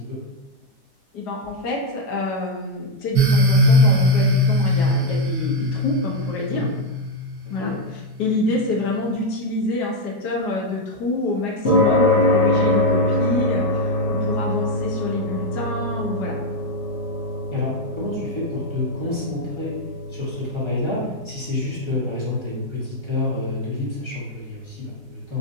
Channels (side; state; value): both; normal; correlation 0.03